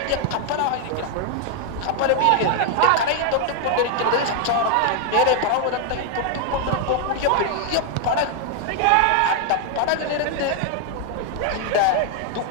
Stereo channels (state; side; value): different; both; correlation 0.00